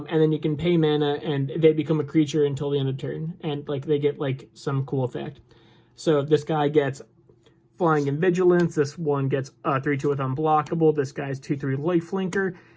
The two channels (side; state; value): both; identical; correlation 1.00